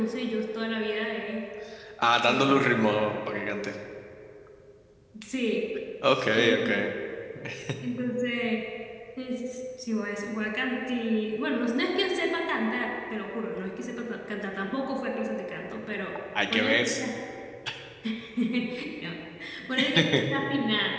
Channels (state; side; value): identical; both; correlation 1.00